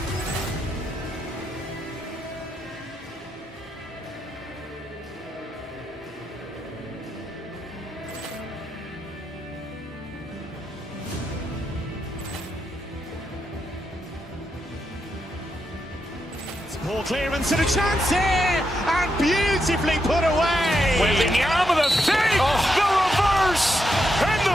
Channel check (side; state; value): both; normal; correlation 0.83